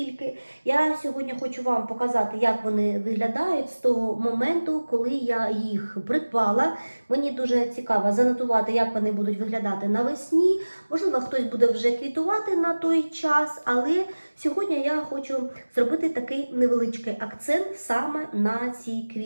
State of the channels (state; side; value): inverted; both; correlation -1.00